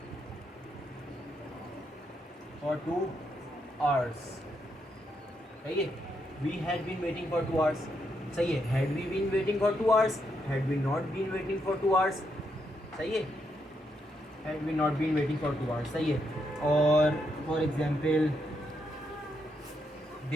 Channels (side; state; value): both; normal; correlation 0.79